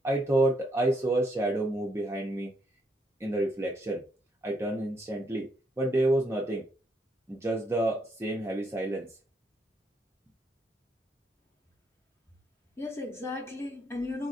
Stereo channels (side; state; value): both; normal; correlation 0.74